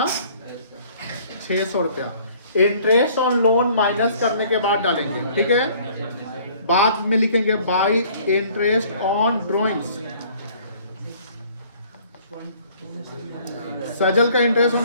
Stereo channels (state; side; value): inverted; both; correlation -0.56